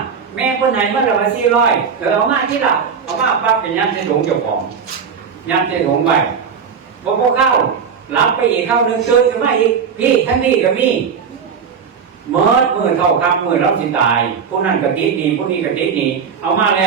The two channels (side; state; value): left; quieter; 6.5 dB